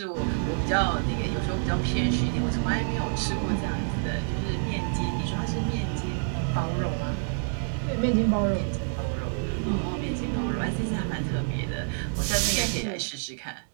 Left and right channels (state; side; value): silent; left; 60 dB below the other